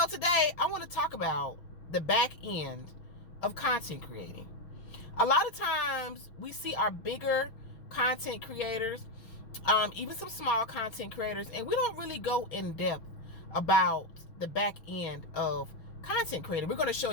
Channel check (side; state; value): right; late; 6.0 ms